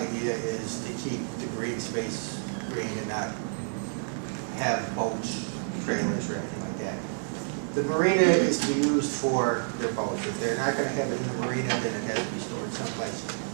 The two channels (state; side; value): silent; left; digital silence